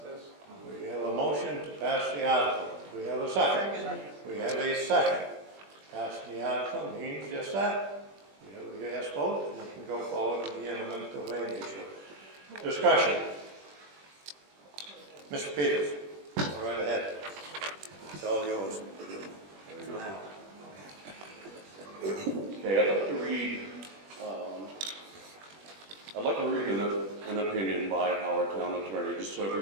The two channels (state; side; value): late; left; 21 ms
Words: this. We have a motion to pass the article. We have a second. We have a second. Passing the article means just that. We have a yes vote, and we can go forward with the eminent domain issue. Discussion. Mr. Peters, go right ahead. It's all yours. Okay, I'd like to read an opinion by our town attorney, just so